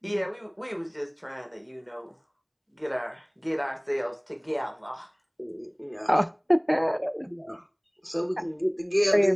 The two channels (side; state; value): both; identical; correlation 1.00